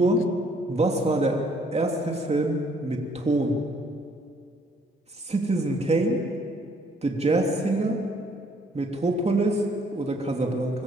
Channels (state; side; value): normal; both; correlation 0.64